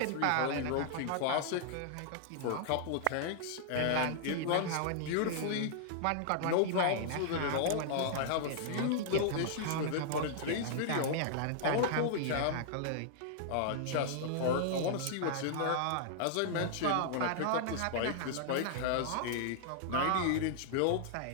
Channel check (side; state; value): both; different; correlation -0.01